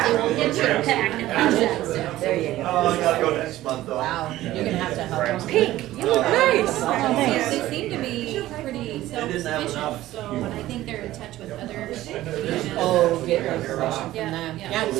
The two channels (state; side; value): quieter; left; 15.3 dB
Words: your pack and pass that stuff. There you go. Oh, I gotta go next month though. Wow, you're gonna have to help them. Pink, you look nice. thanks. They seem to be pretty They didn't have self-sufficient, enough. so, and I think they're in touch with other regions. Oh, get information from Yeah, them. yeah. Yeah,